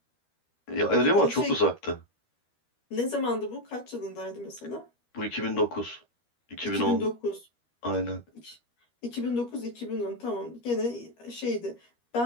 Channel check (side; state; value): right; late; 13 ms